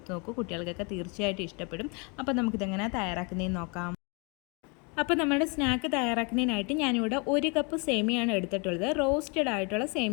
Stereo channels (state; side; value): quieter; right; 32.2 dB